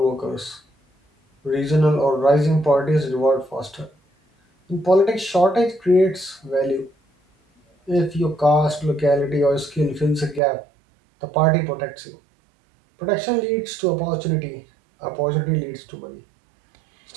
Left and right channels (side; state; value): left; drops out; at 10.4 s